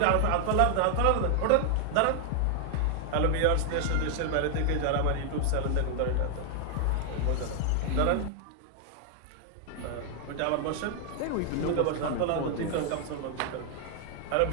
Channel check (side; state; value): both; different; correlation 0.00